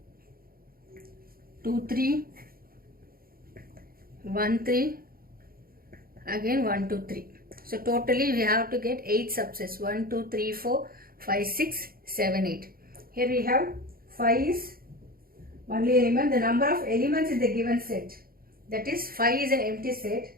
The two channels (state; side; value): late; left; 0.43 ms